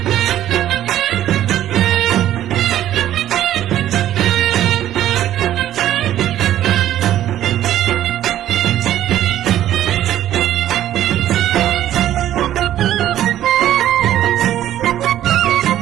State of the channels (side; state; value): left; quieter; 12.3 dB